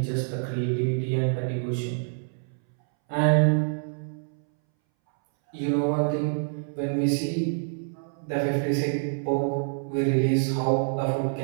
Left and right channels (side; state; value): left; silent; 61 dB below the other